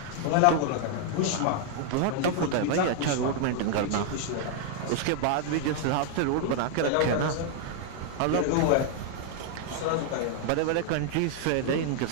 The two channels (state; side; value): different; both; correlation 0.00